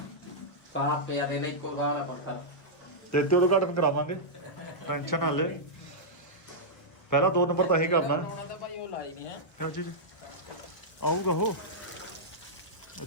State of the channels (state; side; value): late; right; 1.3 ms